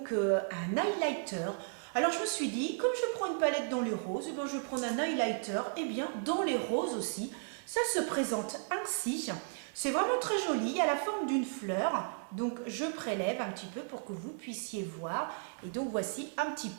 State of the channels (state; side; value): silent; left; 55 dB below the other